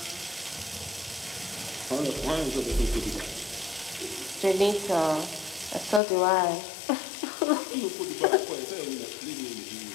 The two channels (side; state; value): right; drops out; at 6.0 s